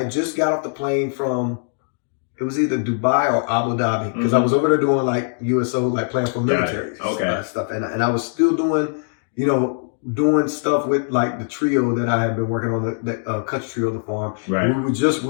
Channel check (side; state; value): right; silent; digital silence